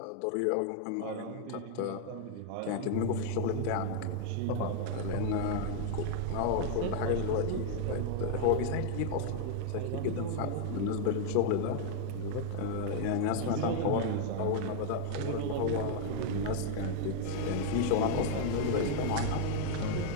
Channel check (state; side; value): different; both; correlation 0.00